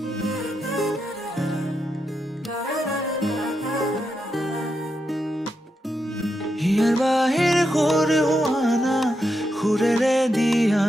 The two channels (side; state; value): both; normal; correlation 0.85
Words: হিয়াৰ বাহিৰ সুৰ হোৱানা সুৰেৰে